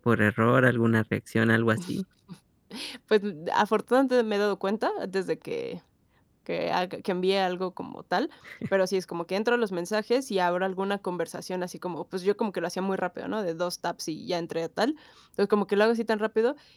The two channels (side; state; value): both; identical; correlation 1.00